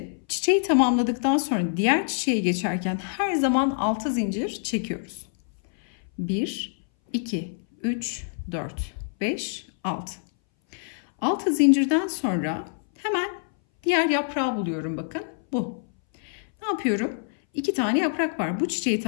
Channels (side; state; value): right; silent; 59 dB below the other